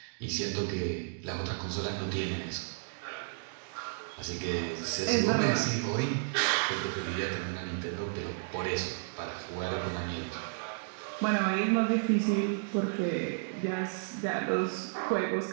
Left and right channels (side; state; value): left; silent; digital silence